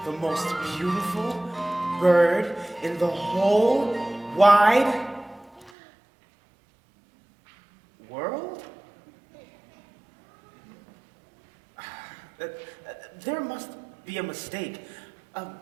the most beautiful bird in the whole wide world? There must be a mistake.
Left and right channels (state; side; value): drops out; left; at 5.7 s